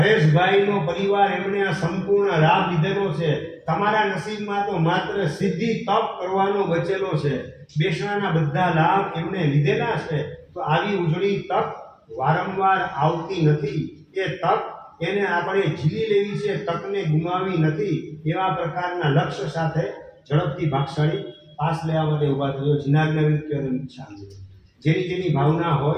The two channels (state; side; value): identical; both; correlation 1.00